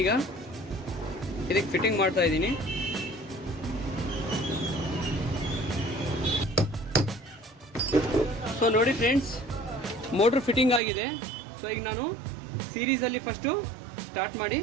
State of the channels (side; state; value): left; drops out; at 10.8 s